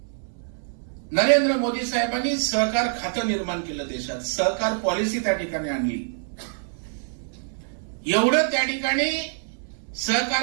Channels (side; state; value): left; silent; 62 dB below the other